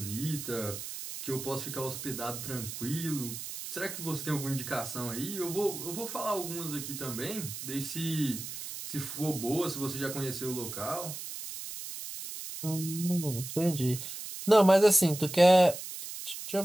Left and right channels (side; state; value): right; noise; hiss, 8 dB below the sound